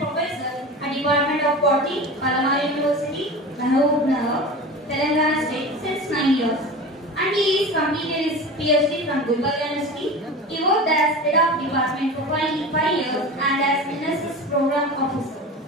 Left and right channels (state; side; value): normal; both; correlation 0.31